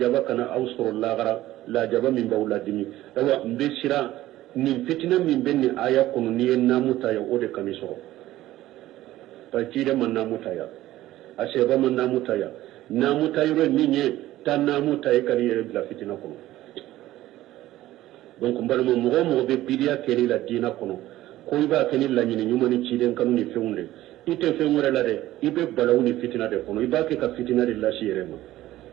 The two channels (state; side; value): quieter; left; 15.2 dB